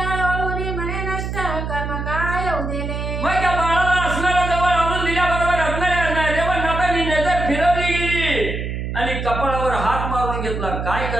म्हणे नष्ट कर्म काय उदेले. मग त्या बाळाला असणारा जवळ आणून दिल्याबरोबर असणाऱ्या रेवणनाथांनी नजर फिरवली गेली आणि कपाळावर हात मारून घेतला. काय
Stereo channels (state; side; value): noise; right; hum, 4 dB below the sound